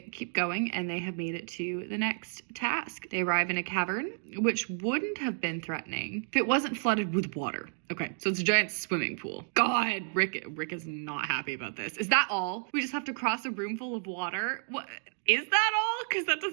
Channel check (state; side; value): silent; left; digital silence